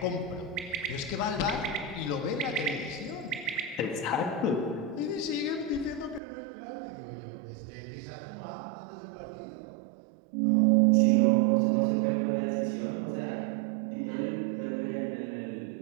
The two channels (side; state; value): left; drops out; at 6.2 s